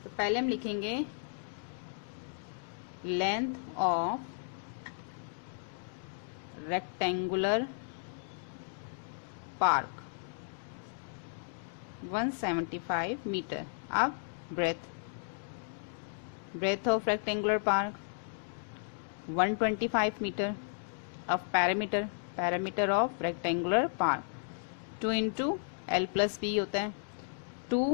तो पहले हम लिखेंगे length of rectangular park 175 metre. अब breadth of rectangular park 125 metre. अब perimeter of rectangular park 2 into L plus B होता है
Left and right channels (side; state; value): right; silent; digital silence